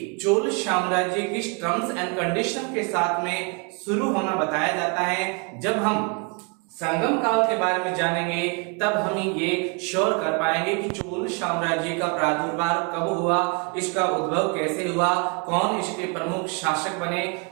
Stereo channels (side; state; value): left; quieter; 33.6 dB